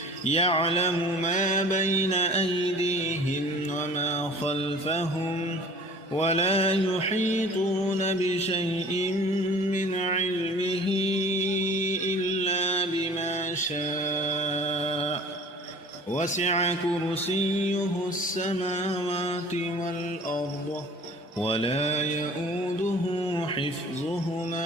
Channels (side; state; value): both; normal; correlation 0.46